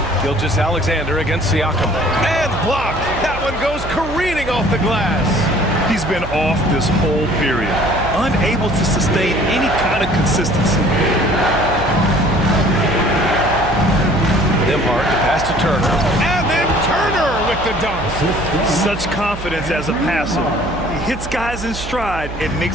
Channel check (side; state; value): right; noise; hum, 10 dB below the sound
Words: Gilgeous-Alexander against Siakam. And blocked. That one goes careening off the glass. He's been off this whole period, unable to sustain any kind of consistency. Nembhard to pass to Turner. And then Turner with the dunk. Such confidence as a passer. He hits guys in stride and